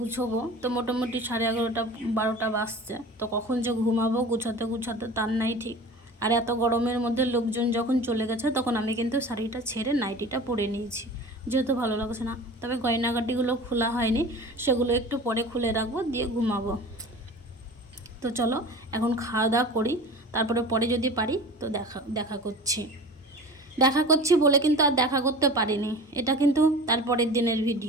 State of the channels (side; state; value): both; normal; correlation 0.37